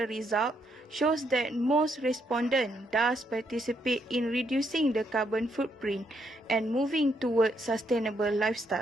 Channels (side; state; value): both; normal; correlation 0.75